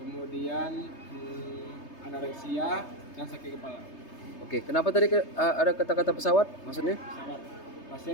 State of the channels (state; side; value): late; right; 3.3 ms